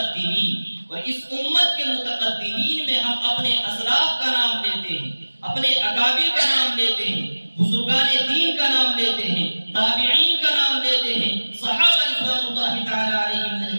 اور اس امت کے متقدمین میں ہم اپنے اسلاف کا نام لیتے ہیں، اپنے اکابر کا نام لیتے ہیں، بزرگان دین کا نام لیتے ہیں، تابعین کا نام لیتے ہیں، صحابہ رضوان اللہ تعالی علیہم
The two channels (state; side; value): inverted; both; correlation -1.00